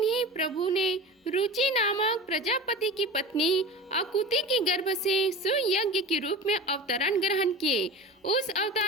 प्रभु ने रुचि नामक प्रजापति की पत्नी अकुति के गर्भ से सुयज्ञ के रूप में अवतरण ग्रहण किए। उस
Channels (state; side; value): normal; both; correlation 0.32